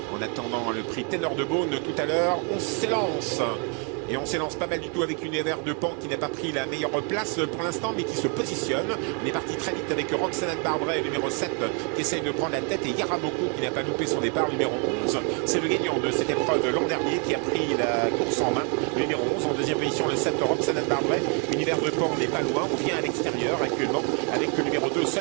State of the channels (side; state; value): left; quieter; 37.4 dB